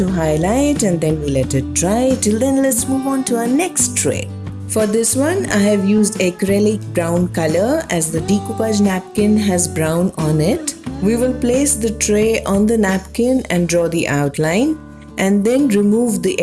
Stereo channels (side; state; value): both; identical; correlation 1.00